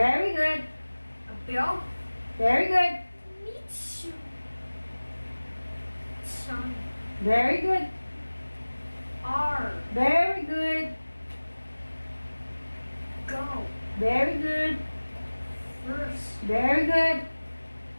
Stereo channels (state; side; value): inverted; both; correlation -1.00